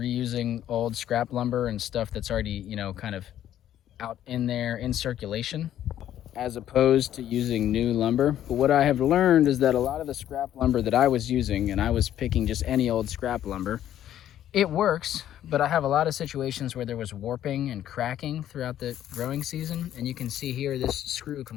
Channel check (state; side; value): quieter; right; 11.5 dB